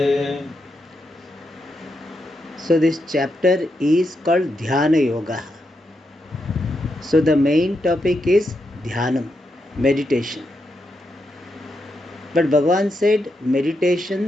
So this chapter is called Dhyana Yoga. So the main topic is Dhyanam, meditation. But Bhagavan said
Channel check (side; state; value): both; normal; correlation 0.83